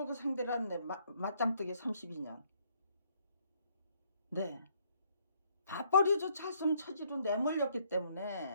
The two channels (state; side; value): inverted; both; correlation -0.67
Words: 상대로 한 맞짱뜨기 32년. 네. 밥벌이조차 할 수 없는 처지로 내몰렸기